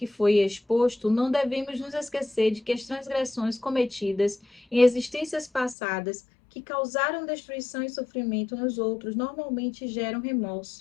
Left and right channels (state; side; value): drops out; right; at 5.8 s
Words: foi exposto, não devemos nos esquecer de que as transgressões cometidas em existências passadas que causaram destruição e sofrimento nos outros normalmente geram